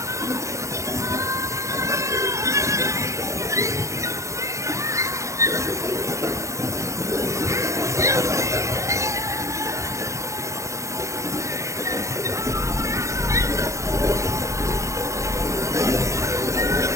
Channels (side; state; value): left; late; 0.15 ms